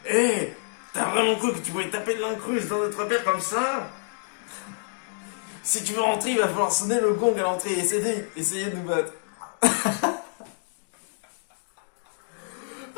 Eh, t'as vraiment cru que tu pouvais taper de l'incruste dans notre bière comme ça? Si tu veux rentrer, il va falloir sonner le gong à l'entrée et essayer de nous battre.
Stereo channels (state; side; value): silent; right; digital silence